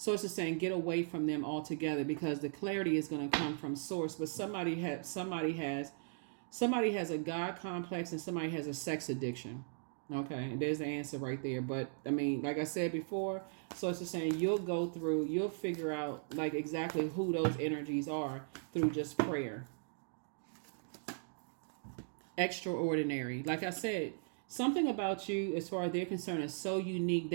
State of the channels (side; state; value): left; silent; digital silence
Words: it's just saying get away from them altogether because the clarity is going to come from source. But somebody has a God complex and somebody has a sex addiction. Okay, there's the answer right there. But I mean, like I said before, so it's just saying you'll figure out like exactly who those energies are through just prayer. Extraordinary. Like I said, something about you as far as they're concerned is so unique.